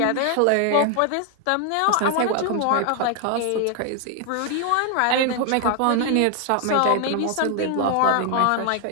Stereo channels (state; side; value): different; both; correlation 0.00